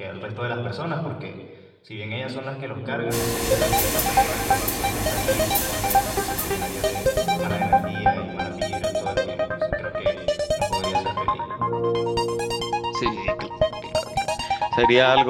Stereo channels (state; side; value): identical; both; correlation 1.00